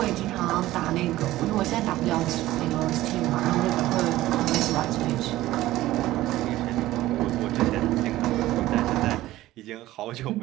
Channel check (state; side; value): quieter; left; 16.0 dB